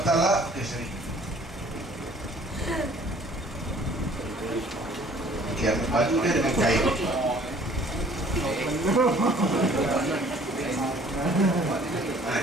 Taala, okey sini. Okey, ambil baju dia dengan kain.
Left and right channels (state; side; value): normal; both; correlation 0.55